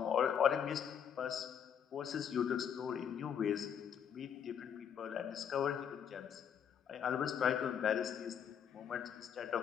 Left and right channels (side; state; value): right; quieter; 8.2 dB